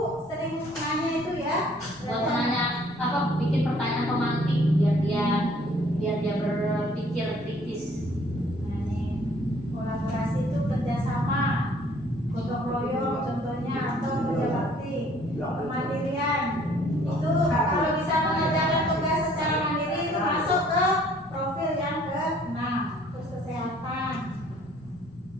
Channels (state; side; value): normal; both; correlation 0.58